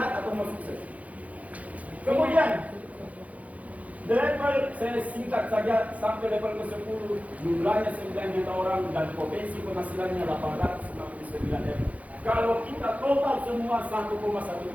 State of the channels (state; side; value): late; left; 0.069 ms